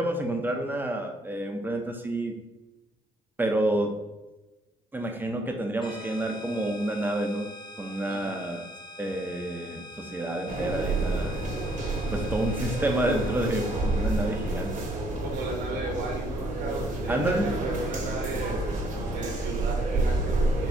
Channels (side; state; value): both; normal; correlation 0.68